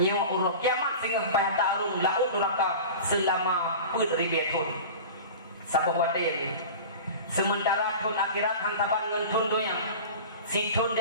urut kiamat sehingga supaya tarung laut neraka selama ribu. Sabah wate ini. Sementara tun akhirat hantaban ngan tun doyang. Si tun di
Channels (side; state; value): both; inverted; correlation -0.34